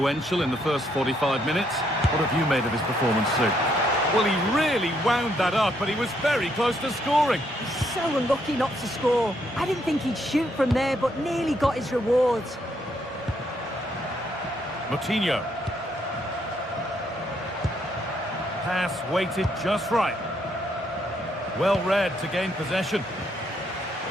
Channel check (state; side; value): normal; both; correlation 0.73